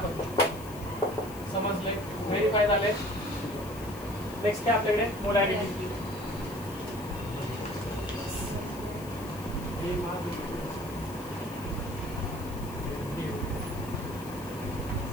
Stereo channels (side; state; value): left; noise; hiss, 17 dB below the sound